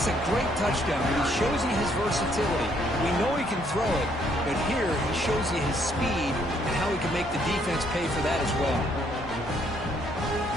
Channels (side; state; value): left; noise; hum, 14 dB below the sound